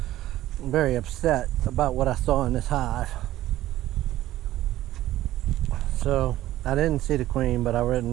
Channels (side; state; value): left; quieter; 14.6 dB